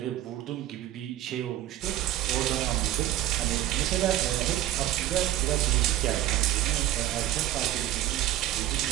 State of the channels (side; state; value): left; quieter; 13.9 dB